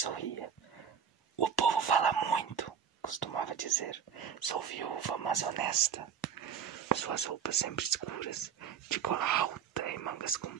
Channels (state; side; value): quieter; left; 7.8 dB